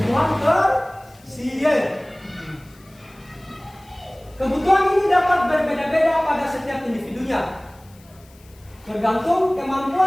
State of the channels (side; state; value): left; noise; hiss, 28 dB below the sound